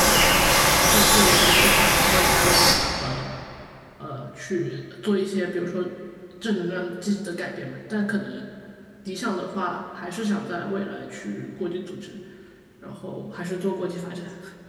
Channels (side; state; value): both; identical; correlation 1.00